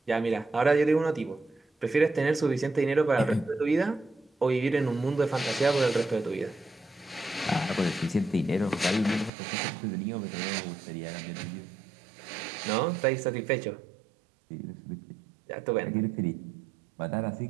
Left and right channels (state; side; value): drops out; left; at 9.3 s